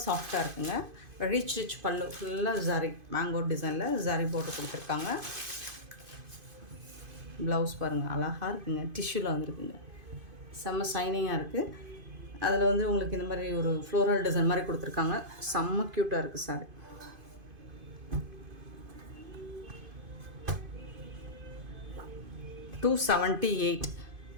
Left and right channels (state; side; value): late; left; 2.5 ms